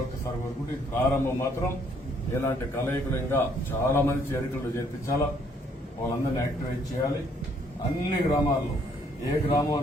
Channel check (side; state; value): both; normal; correlation 0.66